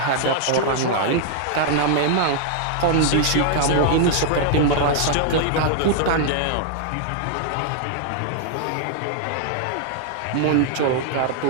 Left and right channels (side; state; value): both; different; correlation -0.01